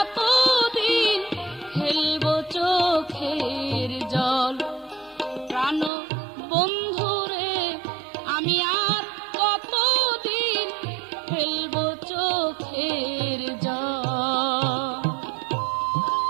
ফেলবো চোখের জল। প্রাণ বন্ধুরে আমি আর কতদিন ফেলবো চোখের জল।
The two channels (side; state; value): left; drops out; at 5.9 s